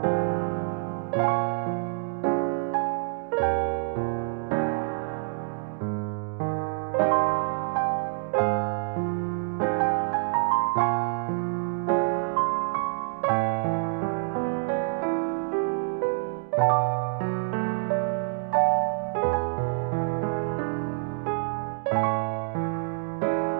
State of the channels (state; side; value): silent; left; digital silence